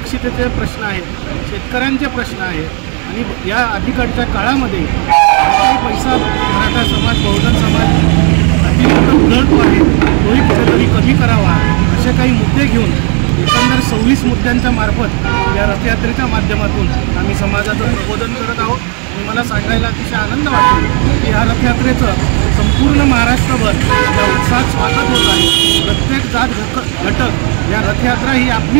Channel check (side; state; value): left; quieter; 37.6 dB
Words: प्रश्न आहेत शेतकऱ्यांचे प्रश्न आहेत आणि या अलीकडच्या काळामध्ये काही पैसा मराठा समाज बहुजन समाज अतिरिक्त उधळतो आहे तोही कुठेतरी कमी करावा असे काही मुद्दे घेऊन एकंदर 26 मुद्द्यांच्या मार्फत या रथयात्रेच्या माध्यमातून आम्ही समाजाचं प्रबोधन करत आहोत। आणि मला सांगायला अतिशय आनंद वाटतो की या रथयात्रेचं संपूर्ण महाराष्ट्रभर या उत्साहात स्वागत होत आहे। प्रत्येक जात घटक या रथयात्रा ही